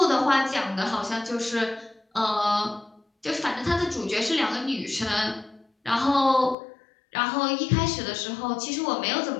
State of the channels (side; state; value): right; drops out; at 6.6 s